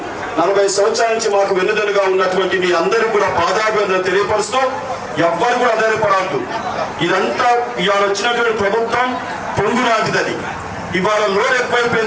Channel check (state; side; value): identical; both; correlation 1.00